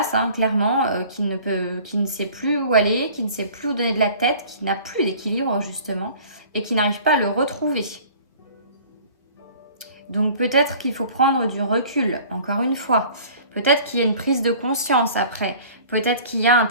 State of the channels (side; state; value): both; inverted; correlation -0.47